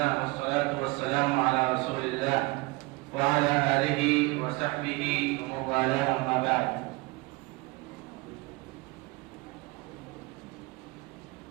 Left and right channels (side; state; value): left; quieter; 24.3 dB